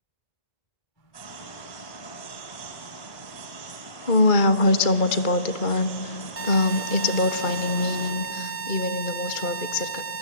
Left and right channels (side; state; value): right; late; 2.2 ms